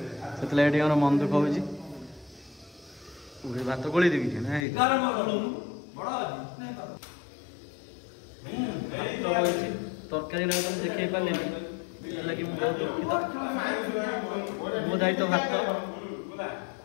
ସେଥିଲାଗି ଟିକେ ଆମର ମନ ଦୁଃଖ ହେଉଛି ଭାତ ଗୋଳେଇ ଦେବି ନା ତରକାରୀ ନା ଦେଖେଇ ପାରିଲିନି ସେଥିଲାଗି ମୁଁ ବହୁତ ଦୁଃଖିତ ମୋ ଦାୟିତ୍ୱ ଭାତ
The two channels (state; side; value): drops out; right; at 4.7 s